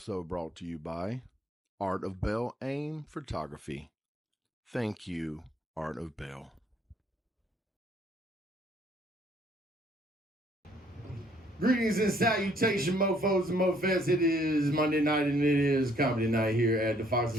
brought to you by Art of Bell Aim Photography. Thank you, Art of Bell. Greetings and salutation, mofos and mofettes. It is Monday night and it is comedy night here at the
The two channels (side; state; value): both; normal; correlation 0.64